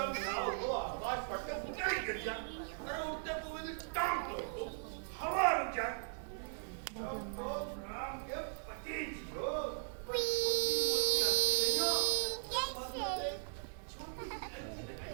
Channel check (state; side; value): silent; left; 52 dB below the other